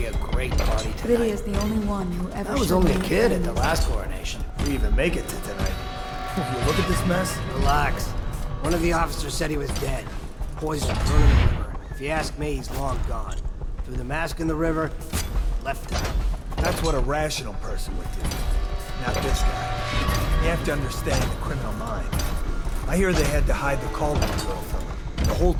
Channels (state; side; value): identical; both; correlation 1.00